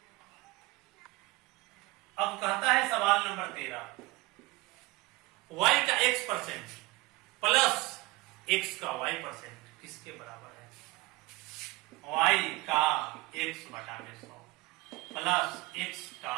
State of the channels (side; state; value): left; quieter; 21.2 dB